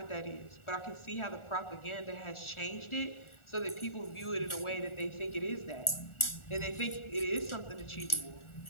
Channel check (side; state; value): right; late; 1.4 ms